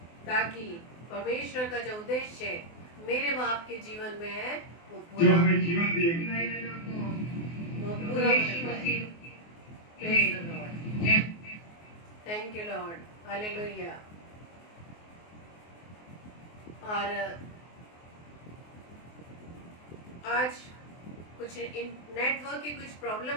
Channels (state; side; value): late; right; 24 ms